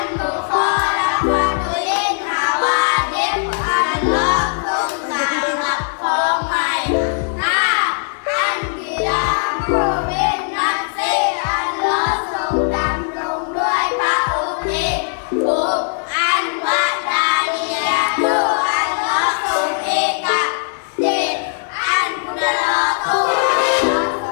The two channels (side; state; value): right; silent; 67 dB below the other